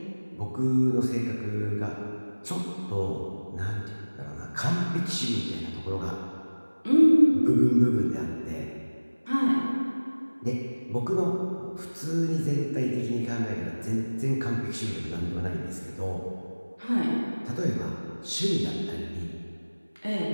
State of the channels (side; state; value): both; inverted; correlation -1.00